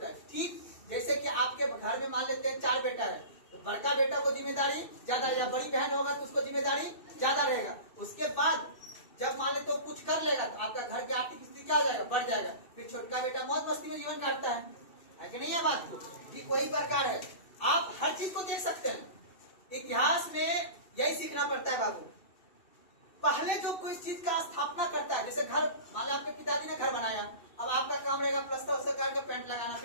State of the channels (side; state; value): right; late; 2.7 ms